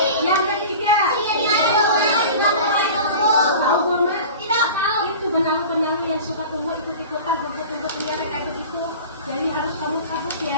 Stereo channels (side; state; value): both; inverted; correlation -0.37